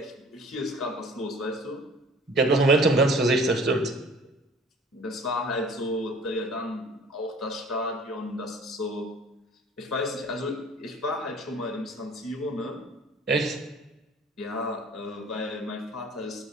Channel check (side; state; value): both; normal; correlation 0.49